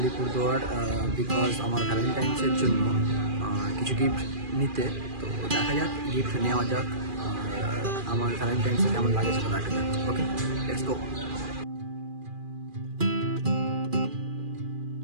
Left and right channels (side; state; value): left; late; 2.4 ms